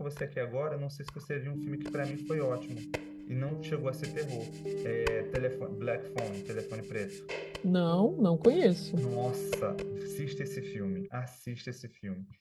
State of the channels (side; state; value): both; identical; correlation 1.00